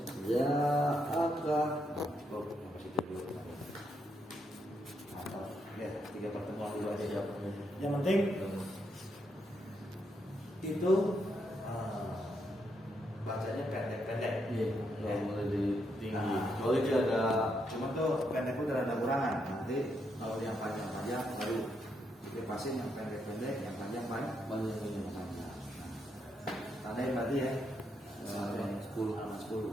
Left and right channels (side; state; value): both; normal; correlation 0.79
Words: Ja'aka. Oh, yang positif dulu. Mantap. Ya, 3 pertemuan dulu aja. Yang penting itu bacanya pendek-pendek. Iya, yang lebih tinggi. Kalau itu ada Cuma tuh pendek itu ada kurangan. Nanti kalau yang panjang-panjang baru dipasin yang pendek-pendek, yang panjang-panjang. banyak yang panjang. Tandain berarti ya. 10 sama 10